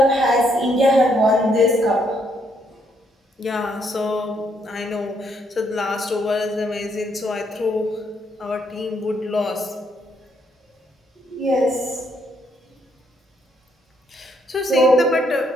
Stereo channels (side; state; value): both; normal; correlation 0.73